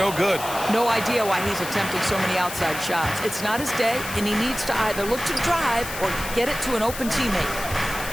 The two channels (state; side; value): noise; left; hiss, 9 dB below the sound